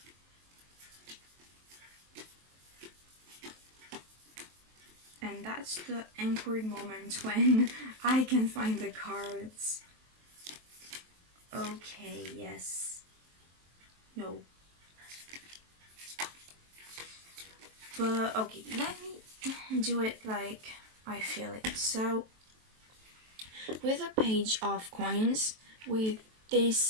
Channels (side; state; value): left; late; 23 ms